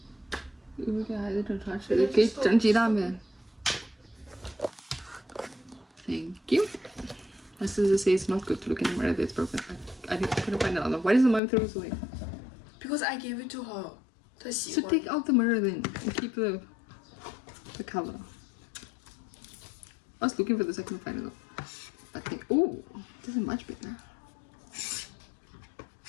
一会儿给孩子整茶吃的，给整鸡蛋呗。Thank you. My sister says it's not good to look in the mirror that's broken. I couldn't find another. Why does the mom throw this away? Because I gave it to her. 她喜 So 欢 take out the mirror then and keep the cover. I was looking for this, I couldn't find it though. I think, oh, this is much bigger.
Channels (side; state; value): right; drops out; at 11.4 s